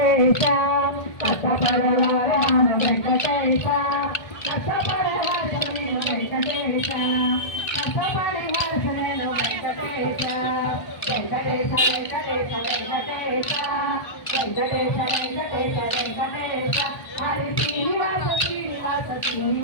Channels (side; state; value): right; late; 1.3 ms